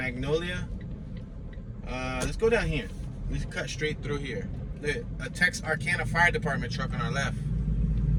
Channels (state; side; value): identical; both; correlation 1.00